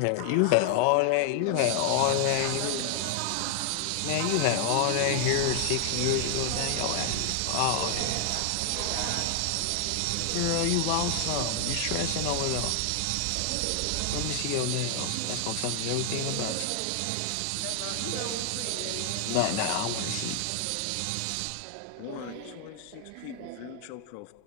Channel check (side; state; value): both; different; correlation 0.00